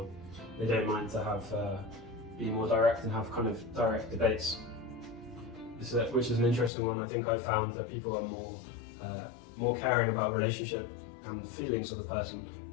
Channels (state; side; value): drops out; right; at 6.7 s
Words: they don't mind to be more direct and have kind of direct debates. Which is an interesting one. I think I've found that people are more caring about relationship and feelings of the person.